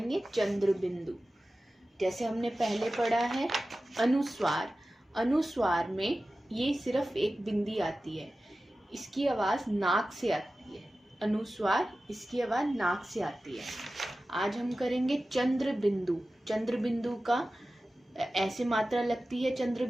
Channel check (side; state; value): both; normal; correlation 0.95